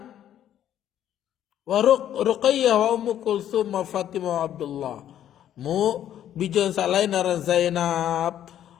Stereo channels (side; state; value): right; quieter; 10.9 dB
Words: wa Ruqayyah wa Ummu Kulsum wa Fatimah wa Abdullah. Bijan sa lain naran Zainab,